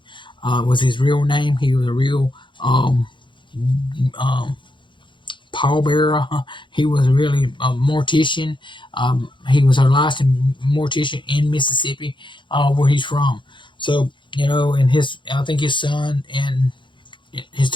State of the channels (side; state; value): right; late; 0.23 ms